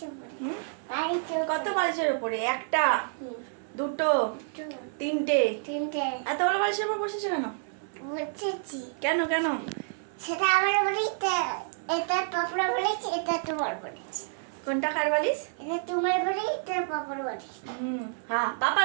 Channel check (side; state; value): left; silent; 58 dB below the other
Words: কত বালিশের উপরে? একটা, দুটো, তিনটে। এত বড় বালিশের উপর বসেছো কেন? কেন কেন? সেটা আমার বলিতে, এটা পাপড়া বলেছি, এটা তোমার বলেছি। কোনটা কার বালিশ? এটা তোমার বলেই, এটা পাপড় বলেছি। হ্যাঁ,